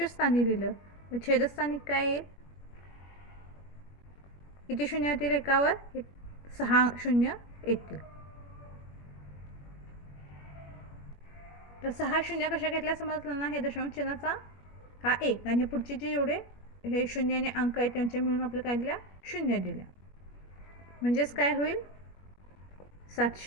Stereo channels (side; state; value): right; late; 21 ms